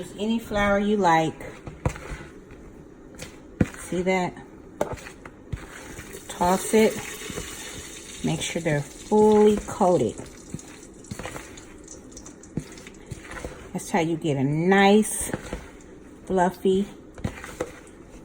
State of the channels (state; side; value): identical; both; correlation 1.00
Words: any flour you like. See that? Toss it. Make sure they're fully coated. That's how you get a nice, fluffy,